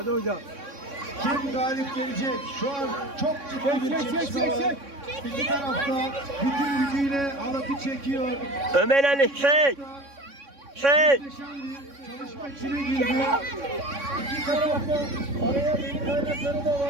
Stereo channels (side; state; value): left; late; 3.6 ms